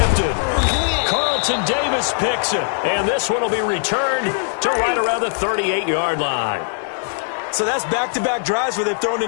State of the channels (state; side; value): silent; right; digital silence